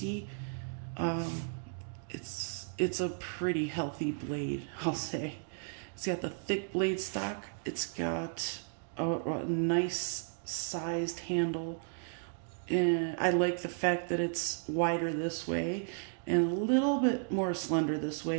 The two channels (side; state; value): left; silent; digital silence